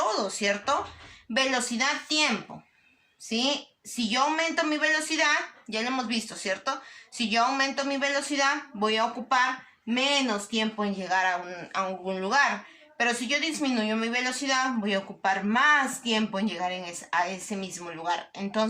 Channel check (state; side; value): identical; both; correlation 1.00